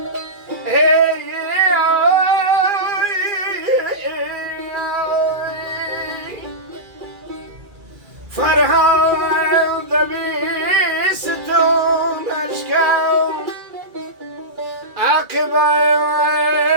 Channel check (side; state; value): left; late; 2.3 ms